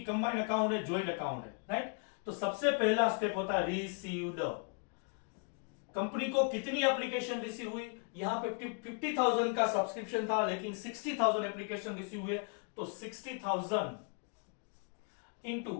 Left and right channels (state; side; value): quieter; right; 38.8 dB